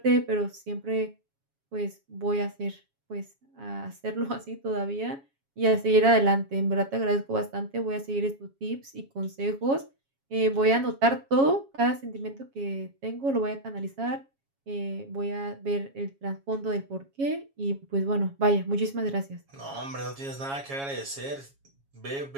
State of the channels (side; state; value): left; late; 7.3 ms